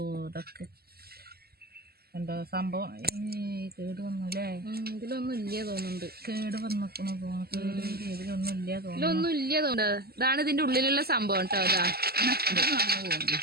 ഇതൊക്കെ എന്തോ സംഭവം കേട് വന്നു അല്ലേ? ഇതിലൊന്നും ഇല്ല തോന്നുന്നുണ്ട്. കേട് വന്നോക്കണോ തോന്നുന്നു. ഇതിലൊന്നും ഇല്ല തോന്നുന്നു. ഇതാണ് ഇതിന്റെ ഉള്ളിലുള്ള സംഭവം കേട്ടോ.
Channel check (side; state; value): left; late; 0.45 ms